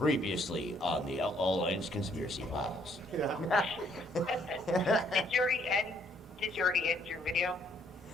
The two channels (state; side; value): normal; both; correlation 0.66